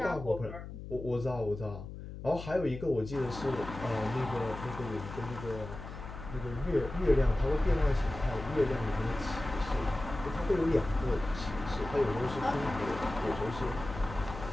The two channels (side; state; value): left; noise; hum, 11 dB below the sound